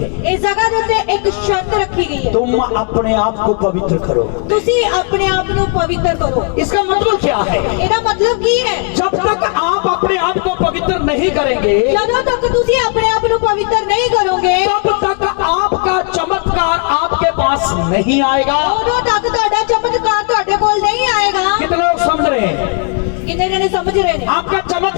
इस जगह ਦੇ ਉੱਤੇ ਇੱਕ ਸ਼ਰਤ ਰੱਖੀ ਗਈ ਹੈ। तुम अपने आप को पवित्र करो। ਤੁਸੀਂ ਆਪਣੇ ਆਪ ਨੂੰ ਪਵਿੱਤਰ ਕਰੋ। इसका मतलब क्या है? ਇਹਦਾ ਮਤਲਬ ਕੀ ਹੈ? जब तक आप अपने आप को पवित्र नहीं करेंगे, ਜਦੋਂ ਤੱਕ ਤੁਸੀਂ ਆਪਣੇ ਆਪ ਨੂੰ ਪਵਿੱਤਰ ਨਹੀਂ ਕਰੋਗੇ, तब तक आपका चमत्कार आपके पास नहीं आएगा। ਉਦੋਂ ਤੱਕ ਤੁਹਾਡਾ ਚਮਤਕਾਰ ਤੁਹਾਡੇ ਕੋਲ ਨਹੀਂ ਆਏਗਾ। कितने लोग समझ रहे हैं? ਕਿੰਨੇ ਜਣੇ ਸਮਝ ਰਹੇ ਨੇ? आपका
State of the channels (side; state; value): right; quieter; 36.6 dB